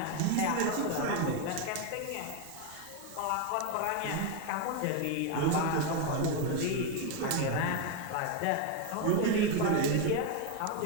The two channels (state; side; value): different; both; correlation 0.01